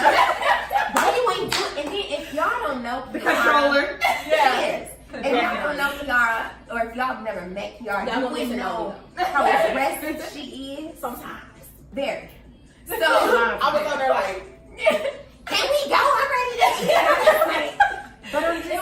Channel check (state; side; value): identical; both; correlation 1.00